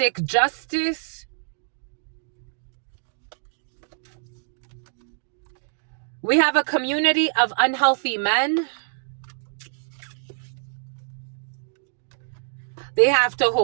justice. We have a community of unhealthy men. They have to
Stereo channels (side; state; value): left; silent; digital silence